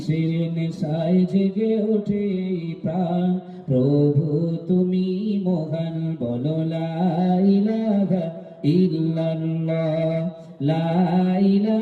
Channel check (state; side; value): identical; both; correlation 1.00